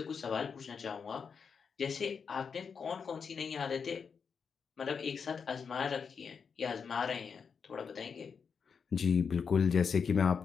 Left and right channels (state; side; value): quieter; right; 6.1 dB